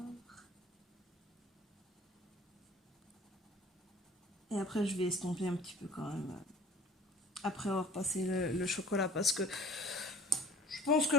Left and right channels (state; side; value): normal; both; correlation 0.48